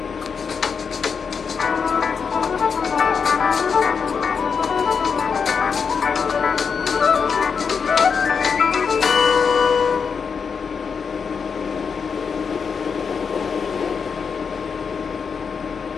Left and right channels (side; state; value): right; quieter; 6.0 dB